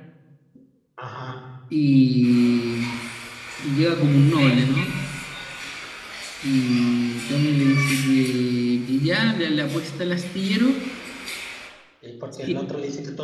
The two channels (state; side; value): identical; both; correlation 1.00